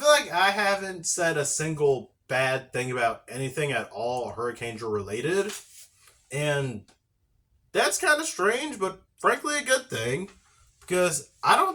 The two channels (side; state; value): both; identical; correlation 1.00